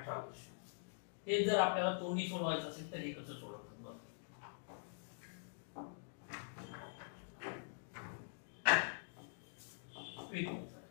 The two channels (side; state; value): right; silent; digital silence